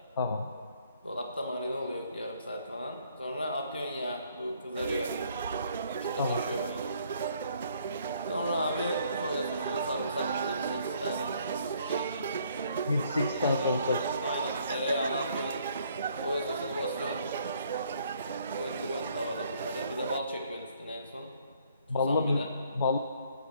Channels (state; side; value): inverted; both; correlation -0.64